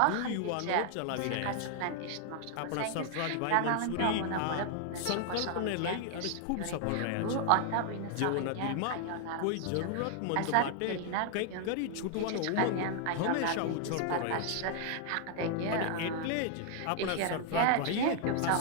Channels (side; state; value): both; different; correlation 0.00